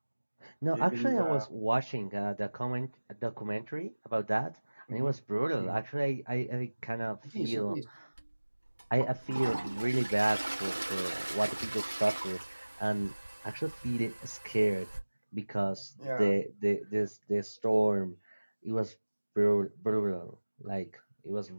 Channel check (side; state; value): both; inverted; correlation -1.00